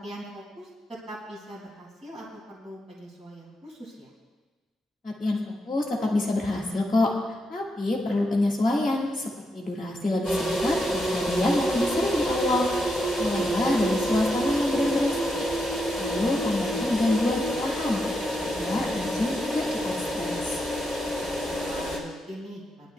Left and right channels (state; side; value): normal; both; correlation 0.83